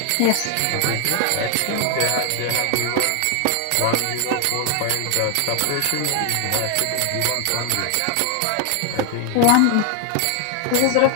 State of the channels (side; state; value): both; different; correlation 0.00